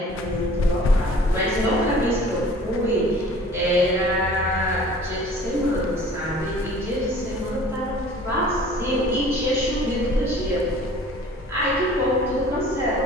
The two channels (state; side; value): normal; both; correlation 0.48